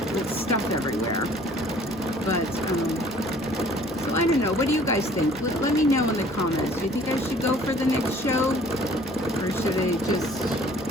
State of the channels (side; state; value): both; normal; correlation 0.54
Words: with stuff everywhere. But, so I don't know. What do you guys think? Let me know in the comments. Do you think I should go for the next show? Or should I just,